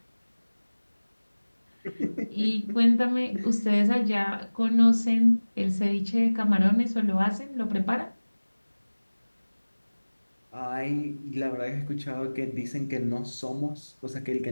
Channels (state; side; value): inverted; both; correlation -1.00